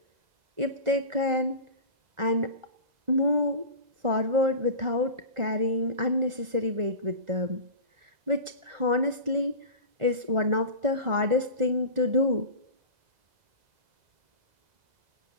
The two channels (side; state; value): left; late; 1.4 ms